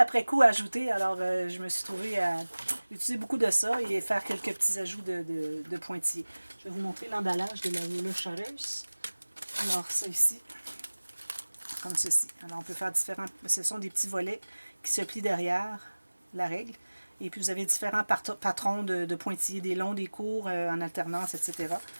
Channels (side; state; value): both; inverted; correlation -1.00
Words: coup à ajouter. Alors, je me suis trouvée à utiliser beaucoup de ça et faire quelques petits ajouts de pointillés. Je vais vous montrer l'emballage de la Ruler Shutters. Alors, ça ici, comme ceci. Alors, on peut faire différents... Ce sont des petits volets qui se plient derrière la règle. Et puis, vous avez différents patrons de pointillés, des longs, des courts, en alternance, etc.